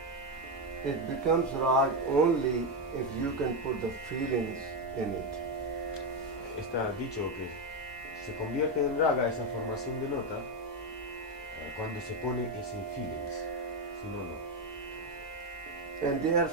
it becomes rag only if you can put the feelings in it. Está dicho que se convierte en raga esa formación de nota cuando se pone ese feelings. Si no, no. And there are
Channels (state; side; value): normal; both; correlation 0.08